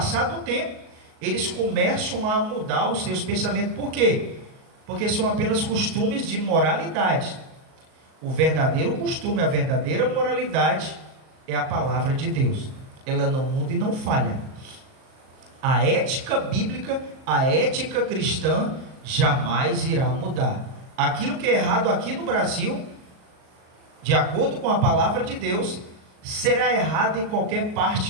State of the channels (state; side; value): late; left; 38 ms